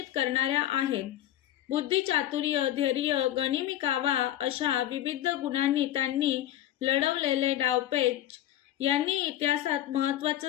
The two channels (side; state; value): right; quieter; 12.8 dB